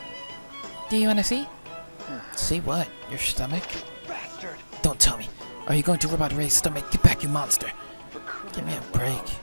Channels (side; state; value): both; inverted; correlation -1.00